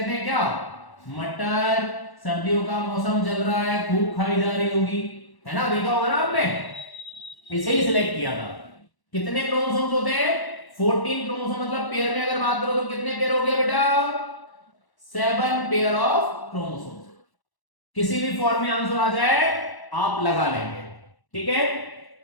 हैं क्या, मटर। सर्दियों का मौसम चल रहा है, खूब खाई जा रही होगी, है ना, देखा होगा ना आपने। इसे ही सिलेक्ट किया था। कितने क्रोमोसोम्स होते हैं, 14 क्रोमोसोम, मतलब पेयर में अगर बात करो तो कितने पेयर हो गए बेटा, 7 पेयर ऑफ क्रोमोसोम्स। किसी भी फॉर्म में आंसर आ जाए आप लगा लेंगे, ठीक है,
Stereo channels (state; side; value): late; right; 1.1 ms